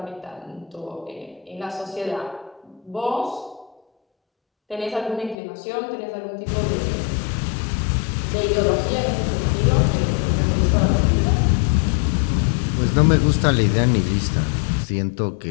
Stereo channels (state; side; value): drops out; right; at 5.4 s